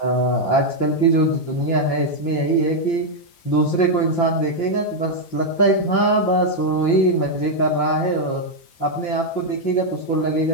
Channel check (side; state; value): right; late; 5.8 ms